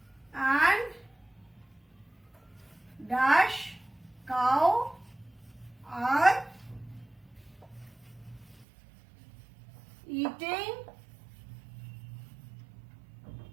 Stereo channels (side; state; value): left; drops out; at 8.7 s